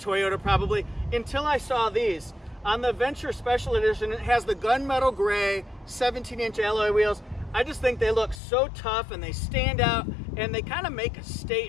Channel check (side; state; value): right; drops out; at 8.4 s